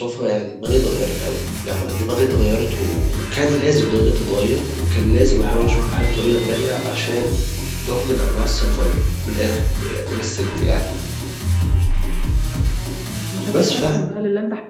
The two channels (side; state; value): both; identical; correlation 1.00